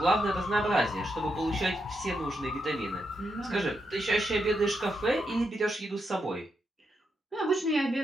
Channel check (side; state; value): both; normal; correlation 0.82